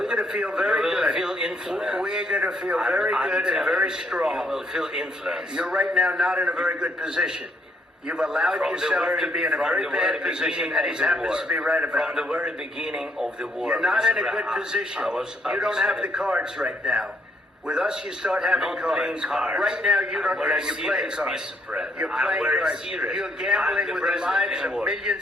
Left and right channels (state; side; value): normal; both; correlation 0.71